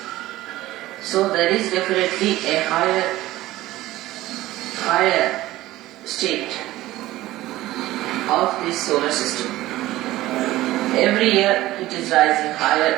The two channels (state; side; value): quieter; left; 16.5 dB